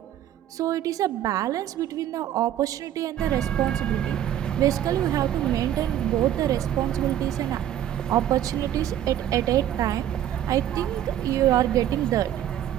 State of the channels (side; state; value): left; quieter; 11.4 dB